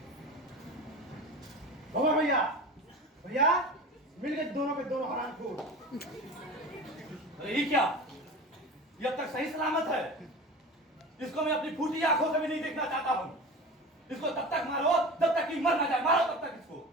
बाबा भैया भैया मिल गए दोनों के दोनों हरामखोर। अरे ये क्या? ये अब तक सही सलामत है? इसको मैं अपनी फूटी आंखों से भी नहीं देखना चाहता हूँ। इसको तब तक मारो जब तक कि मर ना जाए। मारो तब तक इसको।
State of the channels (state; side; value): normal; both; correlation 0.33